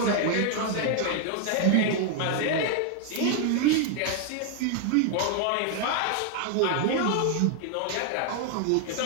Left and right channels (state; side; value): different; both; correlation 0.00